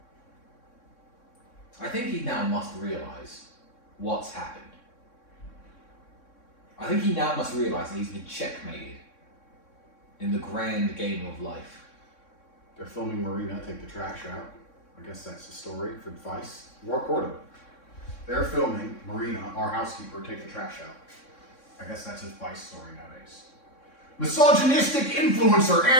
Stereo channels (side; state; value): right; late; 3.6 ms